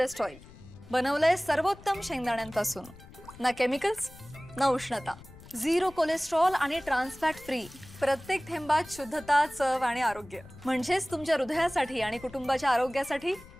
ऑइल बनवलंय सर्वोत्तम शेंगदाण्यांपासून. ना केमिकल्स ना उष्णता, झिरो कोलेस्ट्रॉल आणि ट्रान्स फॅट फ्री. प्रत्येक थेंबात शुद्धता, चव आणि आरोग्य. म्हणजेच तुमच्या हृदयासाठी आणि कुटुंबाच्या आरोग्यासाठी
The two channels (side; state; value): left; noise; rumble, 20 dB below the sound